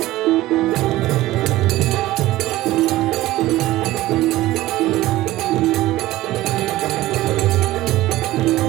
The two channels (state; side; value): quieter; left; 16.7 dB